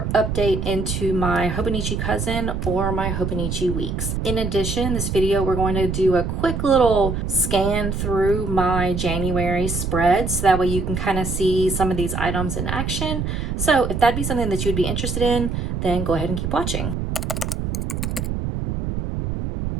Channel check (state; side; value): noise; right; rumble, 2 dB below the sound